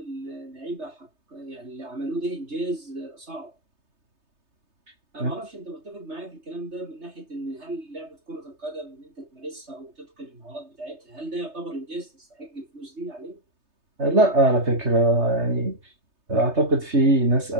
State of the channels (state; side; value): late; left; 3.3 ms